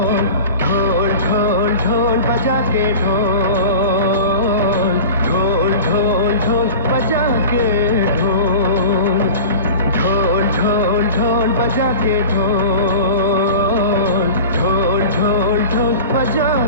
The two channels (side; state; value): both; inverted; correlation -0.35